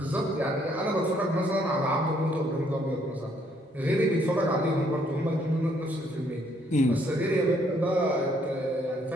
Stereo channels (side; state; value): both; normal; correlation 0.68